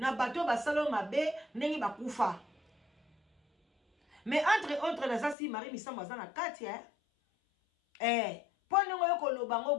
bato basalo mabe ndenge bakufa? Mais entre autres na sasi Marie misamba za na kati pone ngoyo koloba ngo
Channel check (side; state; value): right; drops out; at 5.4 s